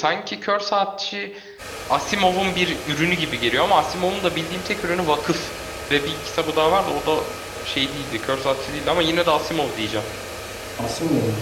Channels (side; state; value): both; identical; correlation 1.00